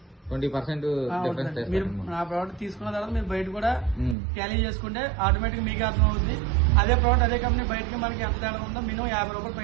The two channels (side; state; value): left; drops out; at 4.2 s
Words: 20% డిఫరెన్స్. మీరు నా ప్రోడక్ట్ తీసుకున్న తర్వాత మీరు బయట కూడా క్యాలీ చేసుకుంటే ఆటోమేటిక్ మీకు అర్థం అవుతుంది. అదే ప్రోడక్ట్ అదే కంపెనీ బయటకి మనకి ఎంత తేడా ఉందో మినిమం 50 రూపాయలు